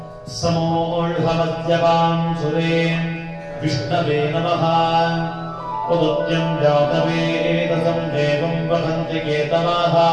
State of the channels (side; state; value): both; identical; correlation 1.00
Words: समोऽढमद्यपां सुरे विष्णवे नमः। उदुत्यं जातवेदसं देवं वदन्ति केतवाः